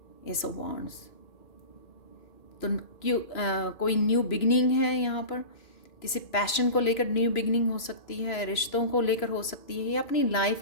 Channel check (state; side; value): late; right; 2.4 ms